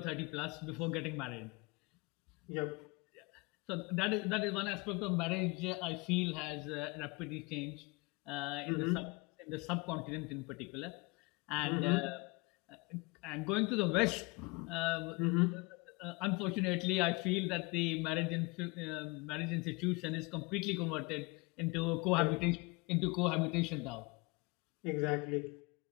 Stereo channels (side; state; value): right; quieter; 26.5 dB